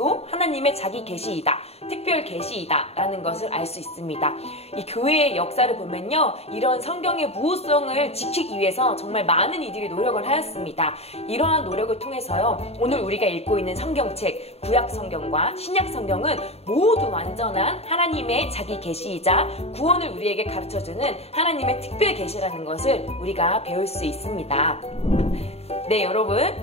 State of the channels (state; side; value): late; right; 0.30 ms